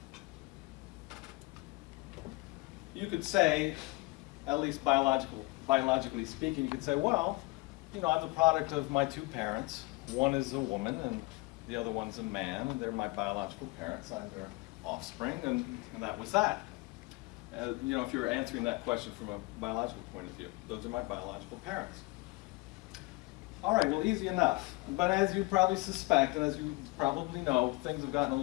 You could say, at least biologically speaking, you could say, well, you know, I'm the product of my 2 parents. One is a woman and the other one's a man, and they're my biological parents. I'm their offspring, and that was that. You know, if you're answering that question from a biological point of view, those are my biological parents. All right, well, easy enough. But as you probably suspect, and as you probably know, things have gotten a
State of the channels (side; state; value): right; quieter; 24.5 dB